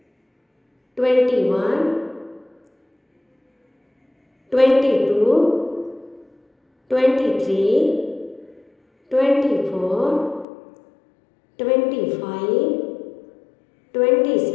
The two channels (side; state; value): right; drops out; at 10.5 s